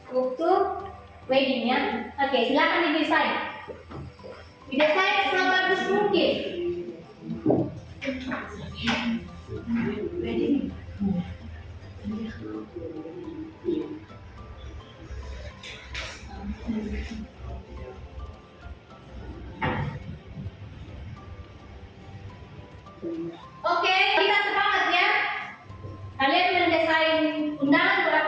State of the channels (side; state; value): both; identical; correlation 1.00